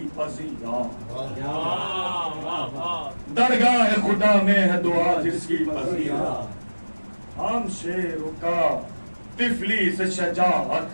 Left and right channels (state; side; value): inverted; both; correlation -1.00